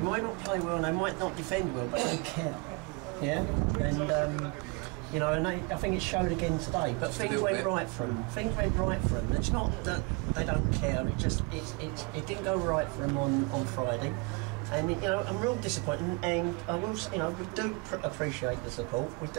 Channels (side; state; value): left; quieter; 29.1 dB